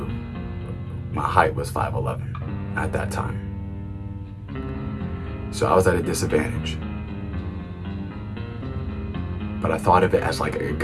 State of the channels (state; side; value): identical; both; correlation 1.00